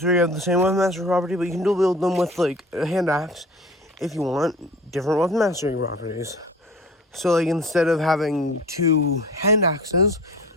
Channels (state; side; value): normal; both; correlation 0.42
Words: have the same weapon mastery property, but you can dual wield them with like a hand axe if you want different weapon mastery properties. So like instead of having two hand axes